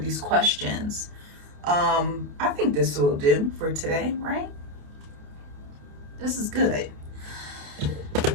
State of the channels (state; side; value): late; left; 28 ms